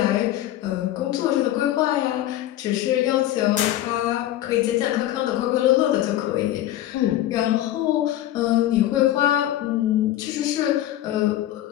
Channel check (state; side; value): quieter; right; 13.5 dB